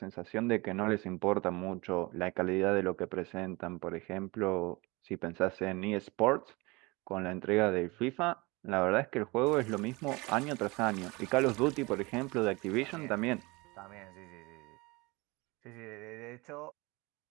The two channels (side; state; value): left; quieter; 24.6 dB